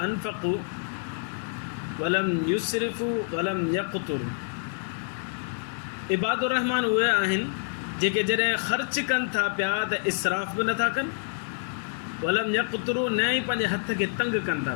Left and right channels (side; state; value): right; silent; digital silence